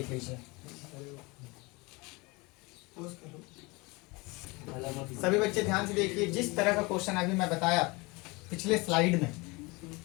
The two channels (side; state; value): right; quieter; 25.5 dB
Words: लीजिए। सभी बच्चे ध्यान से देखिए, जिस तरह का क्वेश्चन अभी मैं बताया पिछले स्लाइड में,